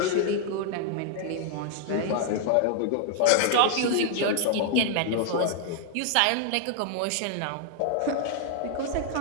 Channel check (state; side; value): different; both; correlation 0.00